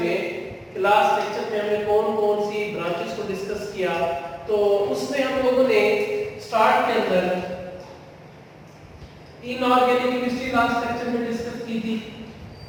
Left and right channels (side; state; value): both; identical; correlation 1.00